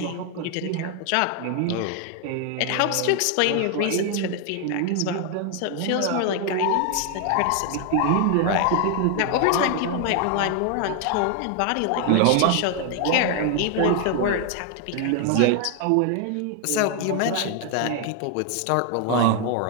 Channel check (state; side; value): different; both; correlation 0.01